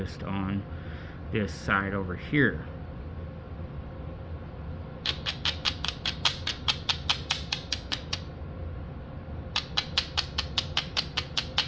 on this side over here.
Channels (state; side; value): identical; both; correlation 1.00